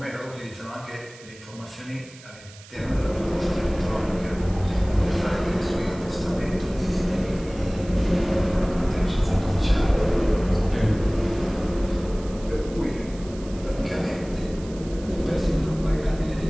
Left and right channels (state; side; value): noise; right; hiss, 21 dB below the sound